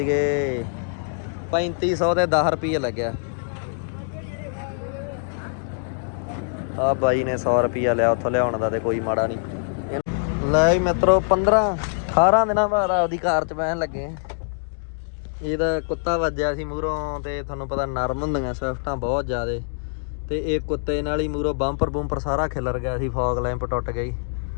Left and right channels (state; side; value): silent; right; digital silence